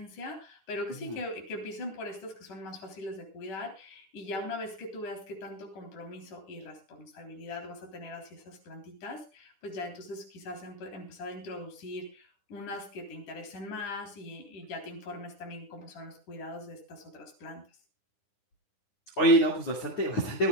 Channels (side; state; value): right; late; 9.9 ms